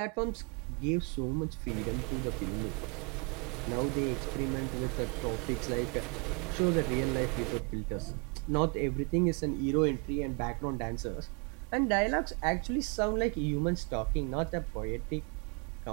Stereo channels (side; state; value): left; quieter; 34.9 dB